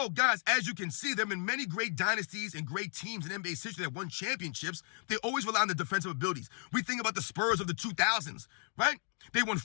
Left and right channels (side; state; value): right; silent; 55 dB below the other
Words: guys, as you can see, there have been many great dynasties and great teams in NBA's history that won championships. They always rely on the defensive abilities. We think about the Spurs of the 2000s, right? They won